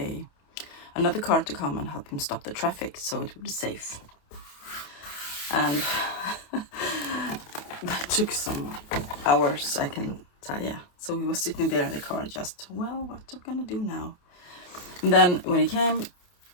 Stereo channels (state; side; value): late; right; 28 ms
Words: another car to come and help him stop the traffic so it would be safe. And that took some hours, I can tell you. So we were sitting there in the car just, well, what are we gonna do now? And then when he came,